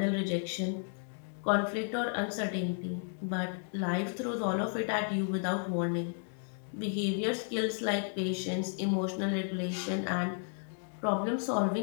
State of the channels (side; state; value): right; silent; 56 dB below the other